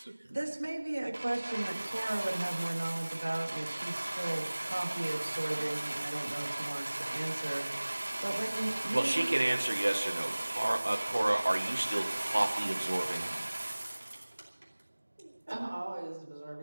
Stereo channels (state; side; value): inverted; both; correlation -1.00